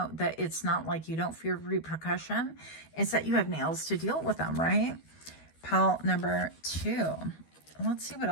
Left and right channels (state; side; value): late; right; 12 ms